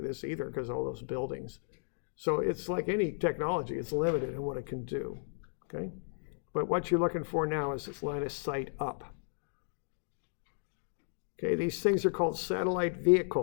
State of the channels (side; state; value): right; silent; digital silence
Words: this either because all those buildings. So it's like any technology, it's limited in what it can do, okay? But what you're looking for now is this line of sight up. Okay, these things are called satellite